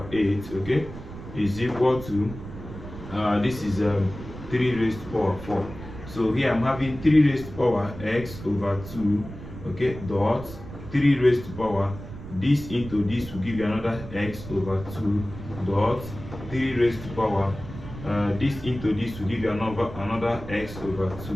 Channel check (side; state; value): right; noise; rumble, 12 dB below the sound